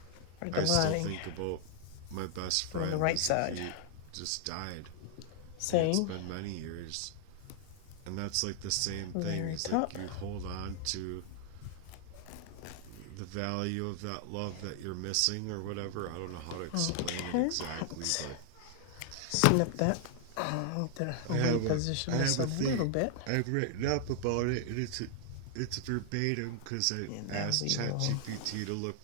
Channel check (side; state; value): both; different; correlation 0.00